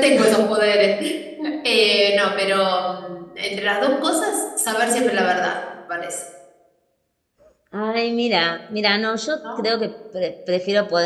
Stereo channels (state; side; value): identical; both; correlation 1.00